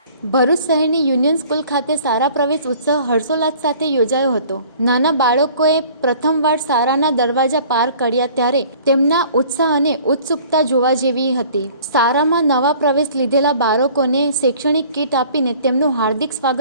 ભરૂચ શહેરની યુનિયન સ્કૂલ ખાતે શાળા પ્રવેશ ઉત્સવ હર્ષોલ્લાસ સાથે યોજાયો હતો। નાના બાળકોએ પ્રથમવાર શાળાના દરવાજા પાર કર્યા ત્યારે તેમના ઉત્સાહ અને ઉત્સુકતા જોવા જેવી હતી। શાળામાં નવા પ્રવેશ લીધેલા બાળકોને શૈક્ષણિક કીટ આપીને તેમનું હાર્દિક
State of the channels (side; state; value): both; inverted; correlation -0.51